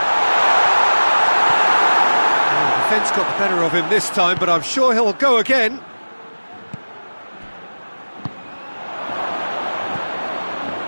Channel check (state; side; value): inverted; both; correlation -1.00